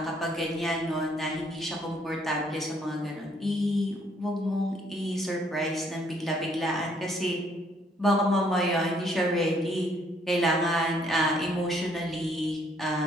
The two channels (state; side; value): normal; both; correlation 0.66